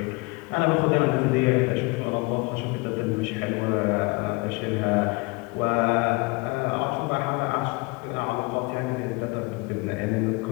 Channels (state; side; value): quieter; right; 26.9 dB